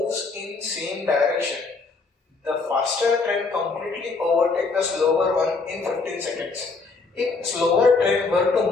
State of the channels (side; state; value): right; quieter; 4.1 dB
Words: in same direction. The faster train completely overtake the slower one in 15 seconds. If slower train were to